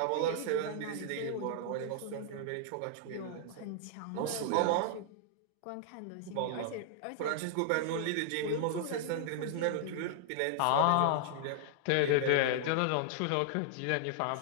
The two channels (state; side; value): different; both; correlation -0.01